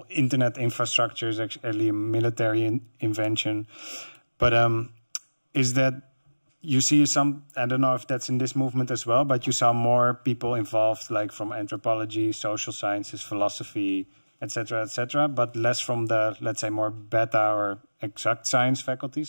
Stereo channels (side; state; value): both; inverted; correlation -1.00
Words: internet infrastructure is actually a military invention. But is that you see some, I don't know if that's in this movement as well, but you saw more people involved, like from anthropology, social sciences, philosophy, etc., but less from the, let's say, more beta or exact science